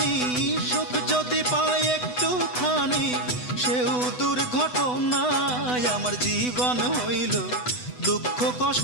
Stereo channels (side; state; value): right; late; 8.0 ms